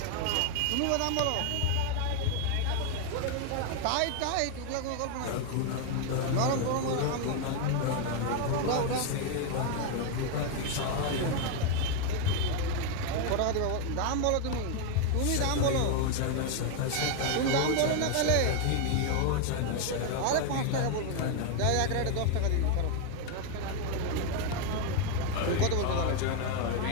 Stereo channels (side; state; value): both; different; correlation 0.01